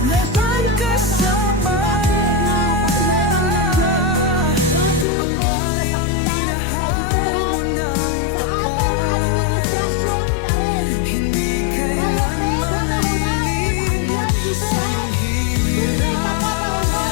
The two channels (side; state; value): right; drops out; at 5.1 s